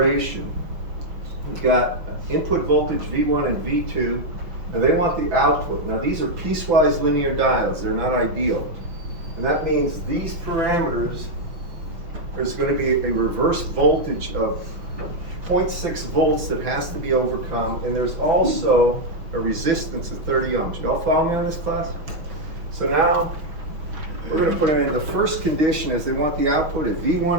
We've got input voltage V1 and V2, and they want the output. Now these are piecewise linear diodes, they're not ideal. And that means these parameters, there's going to be a reverse voltage of 0.6 volts that has to be overcome, and there's also a resistance of 30 ohms. Y'all follow me on this, class? So now, we're going to put in the first condition is they want the output of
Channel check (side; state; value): left; late; 5.9 ms